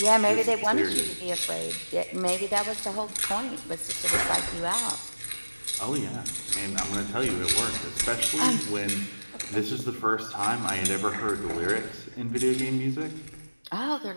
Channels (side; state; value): both; inverted; correlation -1.00